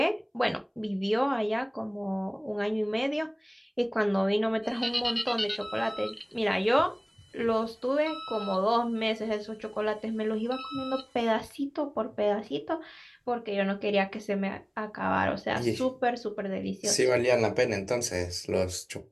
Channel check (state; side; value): identical; both; correlation 1.00